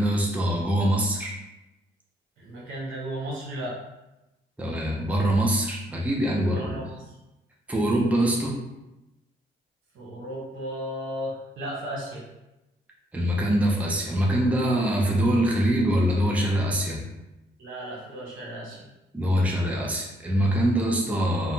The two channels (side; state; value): both; normal; correlation 0.73